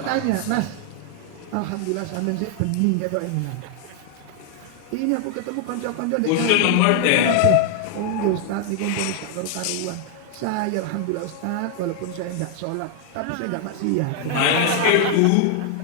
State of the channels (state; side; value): different; both; correlation 0.00